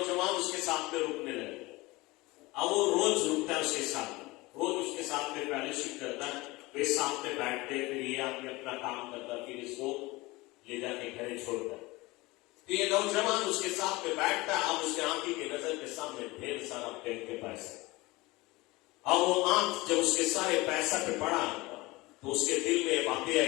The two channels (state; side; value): quieter; right; 21.8 dB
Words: उसके साथ में रुकने लगे। अब वो रोज रुकता है उसके साथ, रोज उसके साथ में फैलोशिप करता है, वे साथ में बैठते, फिर ये आदमी अपना काम करता, फिर इसको ले जाके घर छोड़ता। तो ये नौजवान उसके साथ में बैठता, अब उसके आंखी की नजर के सामने ढेर सारा बैंक के पैसे। अब वो आंख जब उसके सारे पैसा पे पड़ा तो उसके दिल में बातें